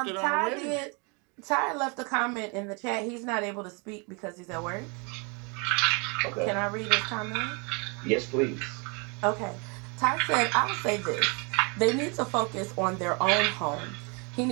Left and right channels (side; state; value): left; quieter; 32.4 dB